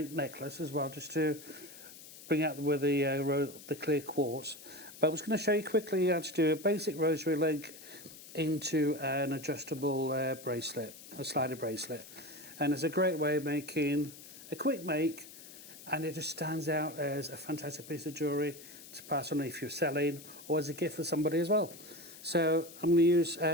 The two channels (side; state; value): left; noise; hiss, 17 dB below the sound